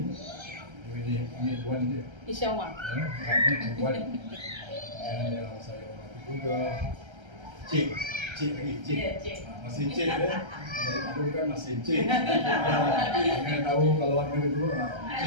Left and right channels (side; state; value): left; late; 1.3 ms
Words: ini Wan dia. InsyaAllah. Wan. Yang saya hormati juga Cik lagi. Cik. Masih Cik ya. Dulu kan masih Cik. Jangan tahu kalau ada itu